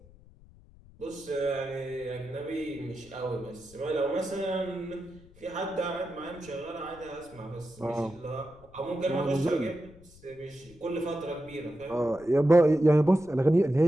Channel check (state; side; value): noise; left; rumble, 24 dB below the sound